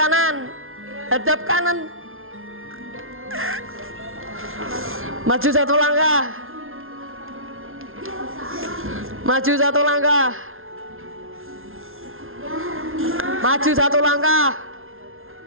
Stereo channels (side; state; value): left; late; 0.61 ms